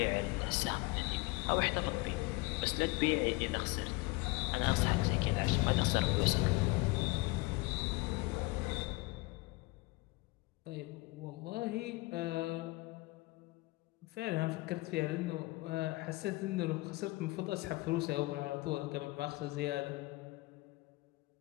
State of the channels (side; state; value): right; quieter; 22.7 dB